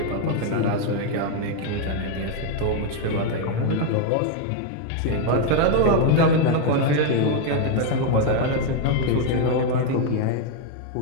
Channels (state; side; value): different; both; correlation 0.01